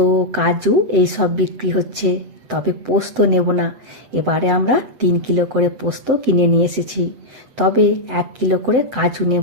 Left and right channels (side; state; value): left; late; 7.8 ms